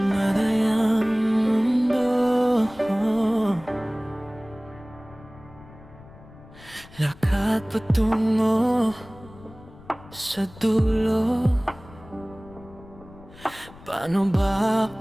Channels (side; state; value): left; noise; rumble, 21 dB below the sound